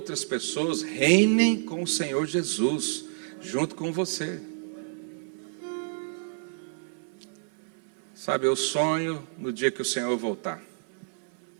pessoas reinem com o Senhor Jesus, junto com você. Sabe, eu sonho no dia que o Senhor voltar.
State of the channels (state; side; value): silent; left; digital silence